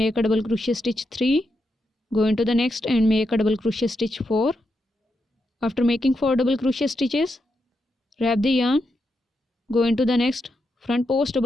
a double crochet stitch 3. Go into the next and make a double crochet stitch 4. After making 4 double crochet stitches, wrap the yarn, go into the next front post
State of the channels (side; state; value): both; normal; correlation 0.84